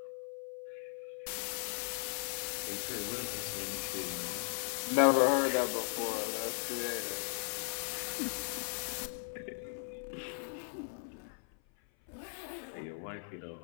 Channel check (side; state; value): right; silent; 53 dB below the other